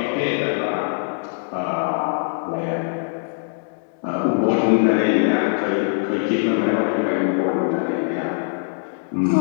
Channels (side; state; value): right; silent; digital silence